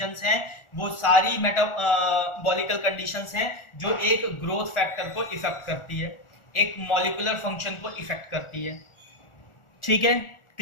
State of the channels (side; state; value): right; late; 1.4 ms